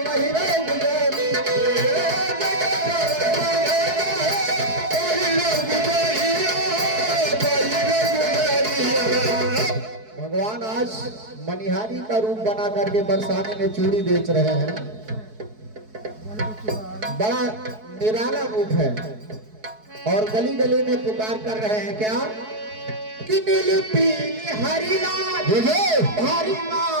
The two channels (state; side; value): late; left; 4.6 ms